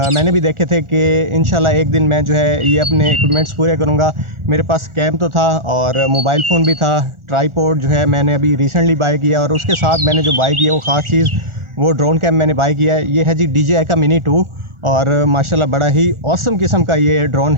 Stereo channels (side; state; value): left; late; 1.4 ms